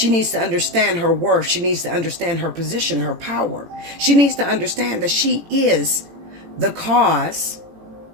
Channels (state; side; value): late; left; 18 ms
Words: needs to understand her worth. She needs to understand her position, her power. She needs to understand that she is the cause